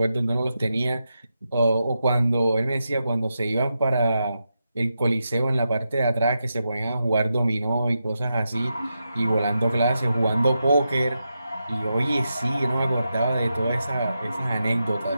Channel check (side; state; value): both; inverted; correlation -0.87